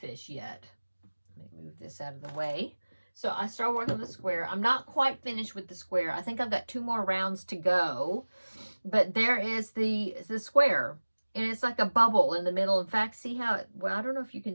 yet. Let me move this out of the way. So I started working on the square. I'm not quite finished with the square. I think I've got 2 more rounds to go. But there is the square. And it's like a bubble in the middle. In fact, see how well, I don't know if you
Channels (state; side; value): inverted; both; correlation -1.00